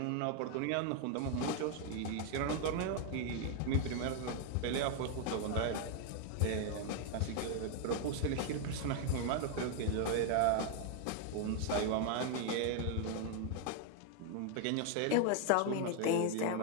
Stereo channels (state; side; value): different; both; correlation 0.00